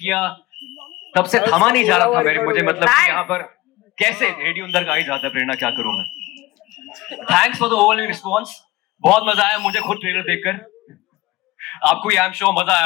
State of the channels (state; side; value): quieter; right; 19.3 dB